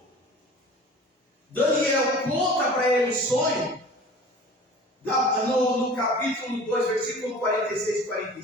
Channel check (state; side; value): normal; both; correlation 0.42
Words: Daniel conta para ele o sonho, no capítulo 2, versículo 46 e